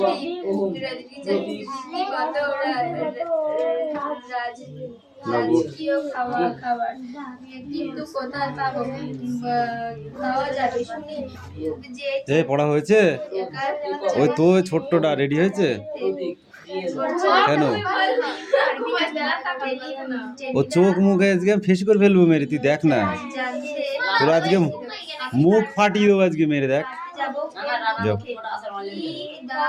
কত রাজকীয় খাবার কিন্তু কোথায় পাবো খাওয়া যাবে শুনি যে এই পড়া হয়েছে ওই তো ছোট্টটা রেডি হয়েছে কেন ও চোখ মুখে আজকে ফেস করে ফেলবো মেরে তুই দেখ না জানতে তোর আজকে মুখ ফাটিয়ে দেবো আজকে মেরে দেখ। যাও।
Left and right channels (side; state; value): both; identical; correlation 1.00